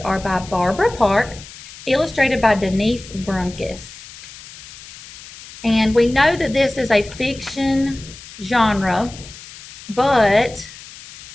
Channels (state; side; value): noise; left; hiss, 17 dB below the sound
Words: by Barbara Park, illustrated by Denise Brunkus. And we know that this is a fiction genre, but